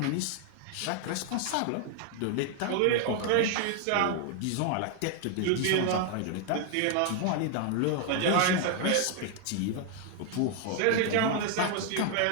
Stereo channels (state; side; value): different; both; correlation 0.00